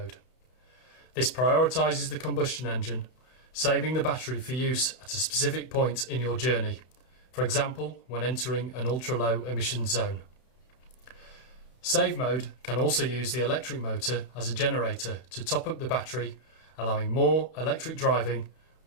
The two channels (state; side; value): late; right; 31 ms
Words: This prioritises the combustion engine, saving the battery for use at a specific point in your journey, for example when entering an ultra-low emission zone. Save mode can also use the electric motor as a generator to top up the battery, allowing more electric driving